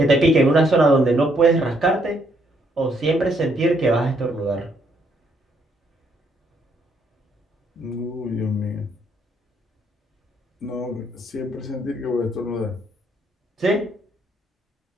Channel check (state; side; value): normal; both; correlation 0.71